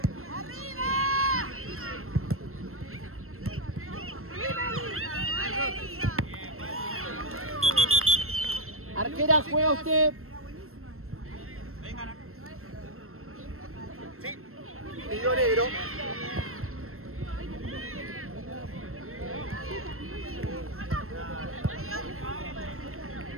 Afuera, juega usted. Sí. Pidió negro.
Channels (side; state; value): left; late; 0.62 ms